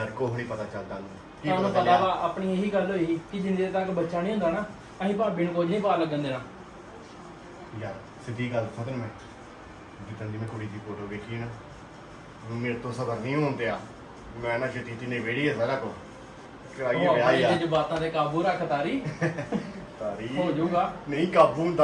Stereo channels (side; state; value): both; identical; correlation 1.00